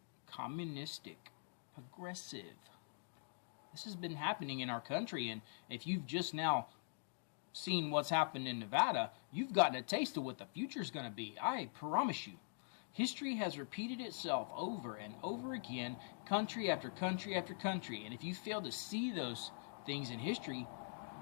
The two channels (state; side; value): silent; right; digital silence